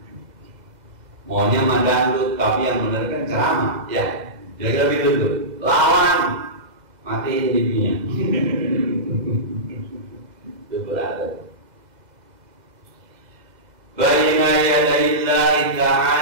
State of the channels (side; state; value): left; late; 2.0 ms